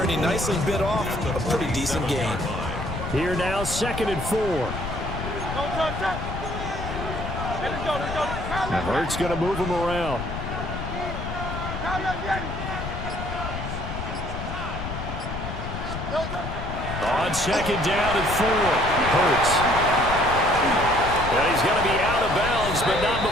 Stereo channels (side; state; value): left; noise; rumble, 6 dB below the sound